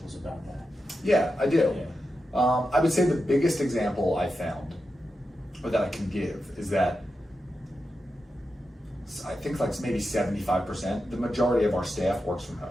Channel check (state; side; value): normal; both; correlation 0.89